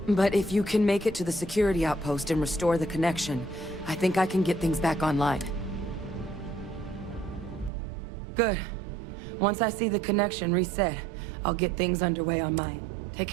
But if you can make it to the security outpost and restore the connection, I think I can get things back online. Good. Once I see the connection reset, I'll get things underway on mine. Take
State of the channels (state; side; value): drops out; left; at 7.7 s